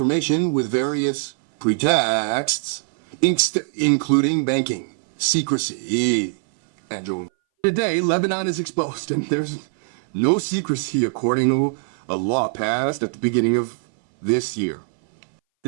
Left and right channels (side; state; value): left; silent; 61 dB below the other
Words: with various pretexts, including banking, secrecy, and journalism. Today, Lebanon is exposed, and there's no secrecy according to a law passed at the beginning of this year.